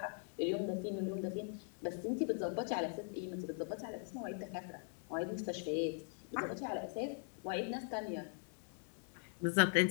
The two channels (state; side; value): silent; right; 50 dB below the other